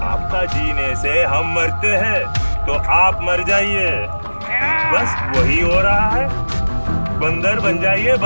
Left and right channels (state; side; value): inverted; both; correlation -1.00